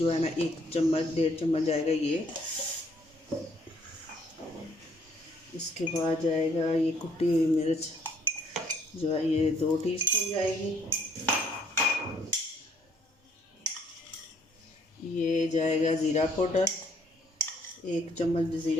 है ना 1 चम्मच 1.5 चम्मच जाएगा ये। इसके बाद जाएगा ये कुटी हुई मिर्च जो है ये 2 टीस्पून जाएगी। ये जाएगा ज़ीरा पाउडर, 1 चम्मच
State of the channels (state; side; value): normal; both; correlation 0.64